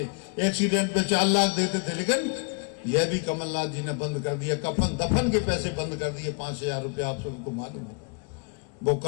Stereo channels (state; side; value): quieter; right; 35.9 dB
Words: एक्सीडेंट पे 4 लाख देते थे, लेकिन यह भी कमलनाथ जी ने बंद कर दिया। कफन दफन के पैसे बंद कर दिए, 5000 रुपया, आप सबको मालूम होगा। वो